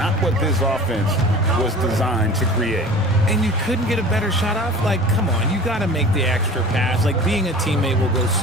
what this offense was designed to create. And you couldn't get a better shot off? Like, come on, you got to make the extra pass. Like, being a teammate will go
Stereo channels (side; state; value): both; normal; correlation 0.40